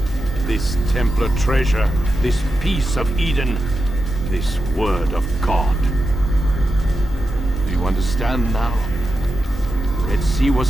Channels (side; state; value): both; normal; correlation 0.89